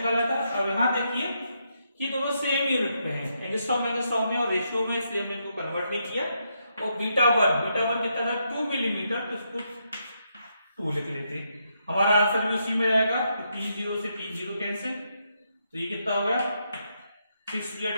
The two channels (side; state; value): both; inverted; correlation -0.79